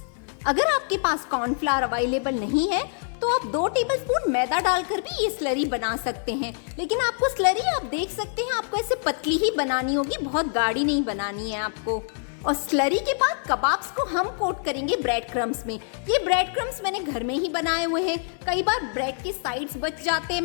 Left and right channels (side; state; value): right; silent; 62 dB below the other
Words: अगर आपके पास कॉर्नफ्लावर अवेलेबल नहीं है, तो आप 2 टेबलस्पून मैदा डालकर भी ये स्लरी बना सकते हैं। लेकिन आपको स्लरी आप देख सकते हैं, आपको ऐसे पतली ही बनानी होगी, बहुत गाढ़ी नहीं बनानी है आपको। और स्लरी के बाद कबाब्स को हम कोट करेंगे ब्रेड क्रम्स में। ये ब्रेड क्रम्स मैंने घर में ही बनाए हुए हैं। कई बार ब्रेड के साइड्स बच जाते हैं,